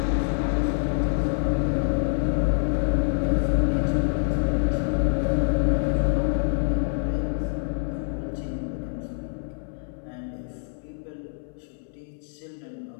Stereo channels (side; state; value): right; silent; 61 dB below the other